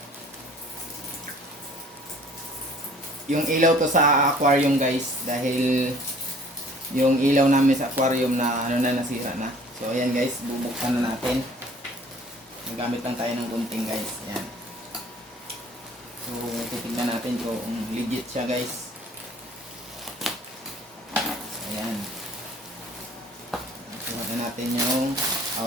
yung ilaw to sa aquarium guys, dahil yung ilaw namin sa aquarium na nasira na. So ayan guys, bubuksan na natin. Nagamit lang tayo ng gunting guys. Ayan. So titignan natin kung legit siya guys. So, ayan. Tingnan natin yung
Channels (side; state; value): both; normal; correlation 0.53